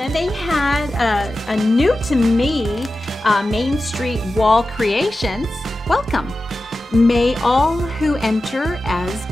they had a new to me Main Street Wall Creations. Welcome. May all who enter as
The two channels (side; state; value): both; normal; correlation 0.94